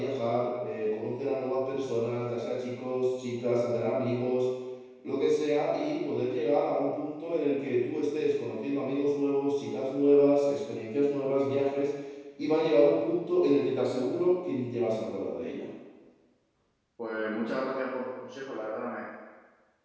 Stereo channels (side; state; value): both; identical; correlation 1.00